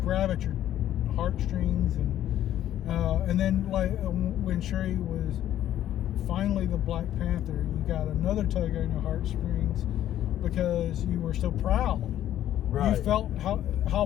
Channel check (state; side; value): quieter; right; 12.0 dB